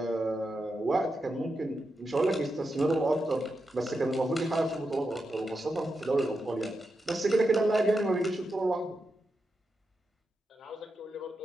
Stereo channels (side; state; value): both; normal; correlation 0.87